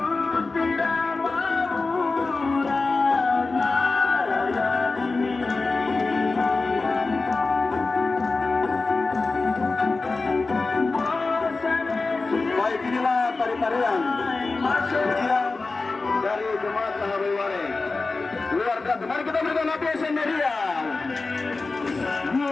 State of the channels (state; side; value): quieter; right; 3.7 dB